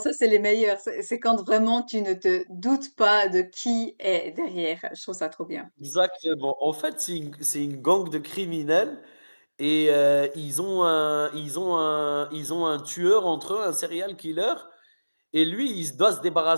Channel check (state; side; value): inverted; both; correlation -1.00